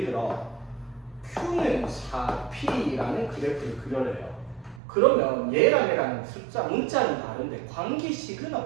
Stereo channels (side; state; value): left; drops out; at 4.8 s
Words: 들어 Q는 4P라는 그래프를 그려래요. 그러면 얘랑 얘랑 숫자, 문자는 다른데 관계식은